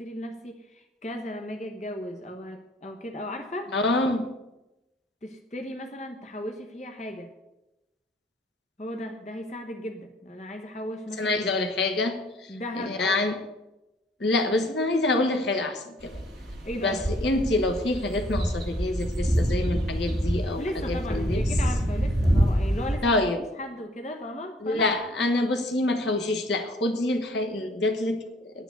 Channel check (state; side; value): normal; both; correlation 0.61